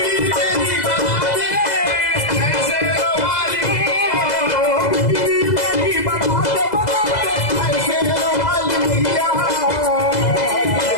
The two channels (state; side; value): late; right; 2.0 ms